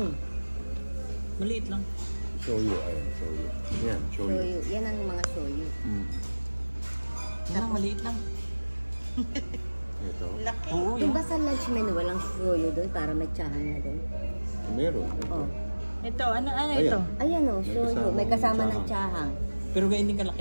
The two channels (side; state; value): both; inverted; correlation -1.00